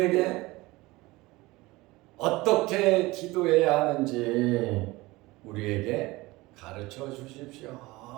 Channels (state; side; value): quieter; left; 20.9 dB